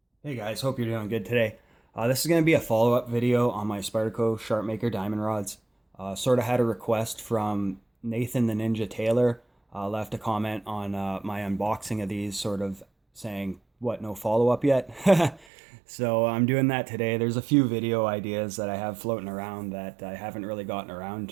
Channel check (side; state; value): left; drops out; at 15.5 s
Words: Hey guys, hope you're doing good today. This is going to be a follow-up video on my Spyderco Sharpmaker diamond rods. Sort of had a request from Nathan the Ninja Taylor. Left a comment on my unboxing of these, sort of saying, what, no follow-up yet? So I'm doing that today. There's a few video ideas that I have floating around that I haven't really gotten around